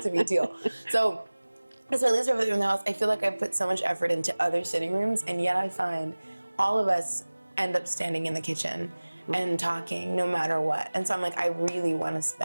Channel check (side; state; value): both; inverted; correlation -1.00